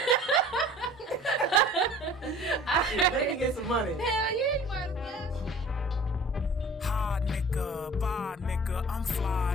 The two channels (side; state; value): both; normal; correlation 0.47